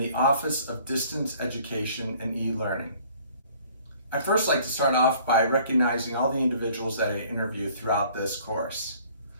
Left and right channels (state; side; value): inverted; both; correlation -0.55